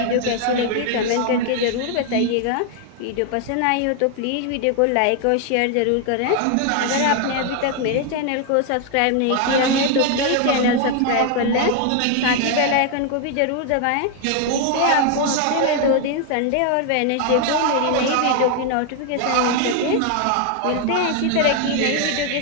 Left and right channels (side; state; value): both; different; correlation 0.00